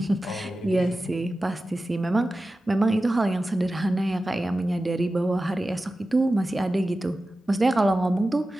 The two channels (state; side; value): normal; both; correlation 0.94